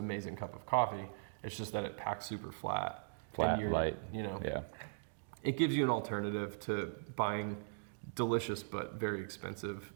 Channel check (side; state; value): left; silent; digital silence